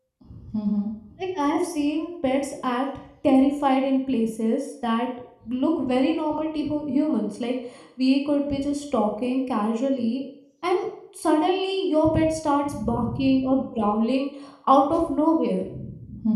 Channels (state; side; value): identical; both; correlation 1.00